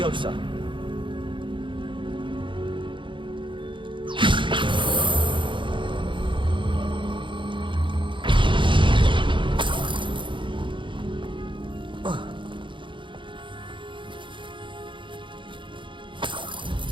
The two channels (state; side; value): late; left; 0.24 ms